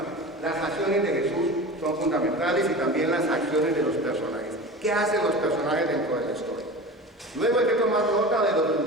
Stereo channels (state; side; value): normal; both; correlation 0.33